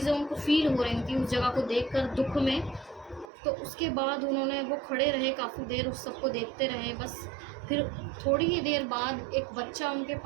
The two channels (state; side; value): drops out; left; at 3.2 s